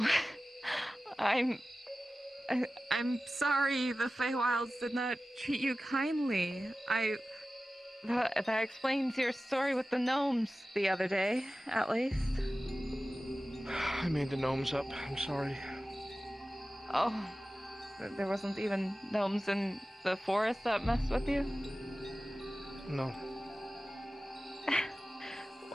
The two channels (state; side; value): normal; both; correlation 0.95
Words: I'm sorry the Feywilds did not treat you kindly. That explains your story with the gnomes the other day, at least. I made the gnomes up. I'm sorry. Oh, there wasn't even gnomes in the forest that messed with you? No.